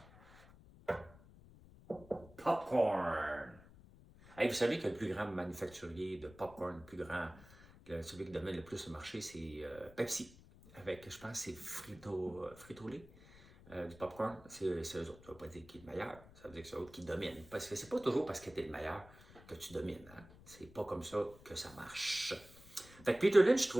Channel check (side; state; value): left; noise; rumble, 21 dB below the sound